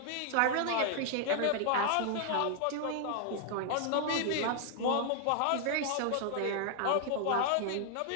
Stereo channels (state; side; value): different; both; correlation 0.00